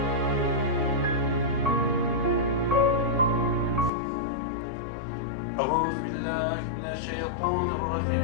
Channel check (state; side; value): drops out; right; at 3.9 s